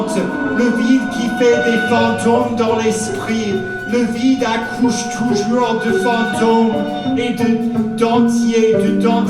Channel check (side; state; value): both; identical; correlation 1.00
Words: le vide qui fait des fantômes dans l'esprit. Le vide accouche toujours de fantômes et de dentiers